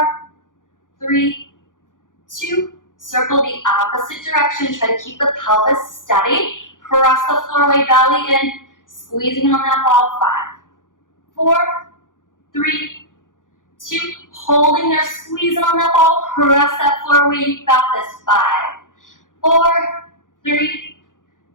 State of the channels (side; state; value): right; late; 0.88 ms